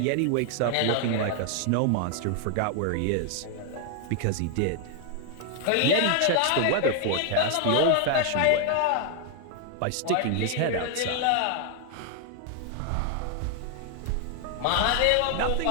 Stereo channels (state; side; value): different; both; correlation 0.00